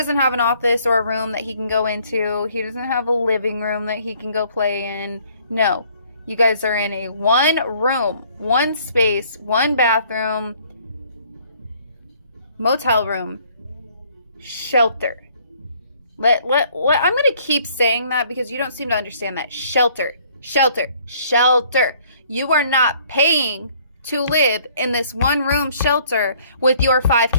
have an office or a room that he can go into. He doesn't have a living room that he can go play in. No. You guys are in a one room, one space, one bathroom, motel room, shelter. I'm going to keep saying that because you don't seem to understand that. Shelter, shelter, shelter. You are not paying to live in this one room shelter with your 5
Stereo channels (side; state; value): both; inverted; correlation -0.60